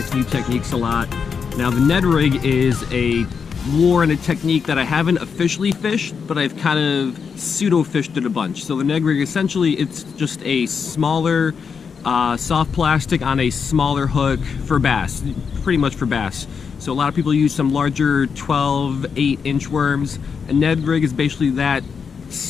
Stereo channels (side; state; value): right; quieter; 6.1 dB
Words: new techniques a lot. Now the Ned rig is a lure and a technique that I haven't officially fished, but I've kind of pseudo fished it a bunch. So the Ned rig, essentially, it's just a smaller soft plastic on a smaller hook for bass, pretty much for bass. So a lot of people use some larger 12, 8-inch worms. A Ned rig is basically that